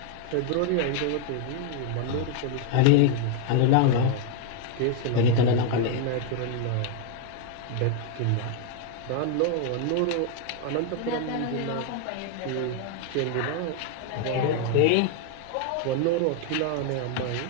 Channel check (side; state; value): both; different; correlation 0.00